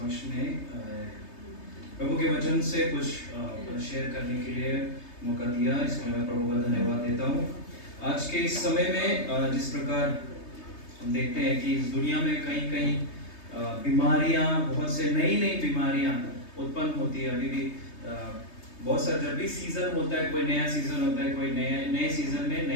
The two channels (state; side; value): late; right; 3.3 ms